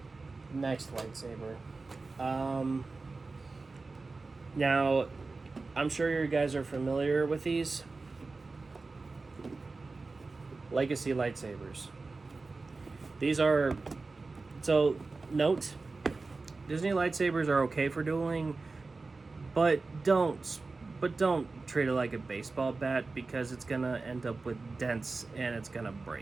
Next lightsaber. Now, I'm sure you guys are familiar with these. Legacy lightsabers. These are... So, note, Disney lightsabers are okay for dueling, but don't treat it like a baseball bat because it's gonna end up with dents and it's gonna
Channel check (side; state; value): left; quieter; 3.8 dB